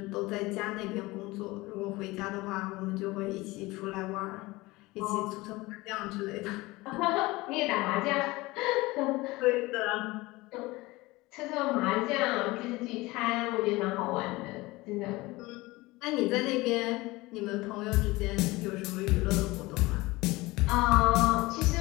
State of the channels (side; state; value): right; quieter; 21.1 dB